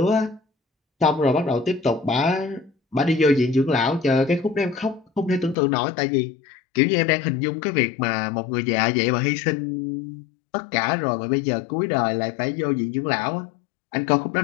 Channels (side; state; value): right; drops out; at 5.6 s